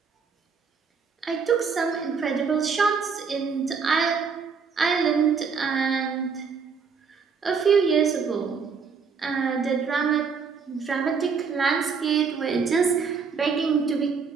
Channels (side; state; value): left; quieter; 5.7 dB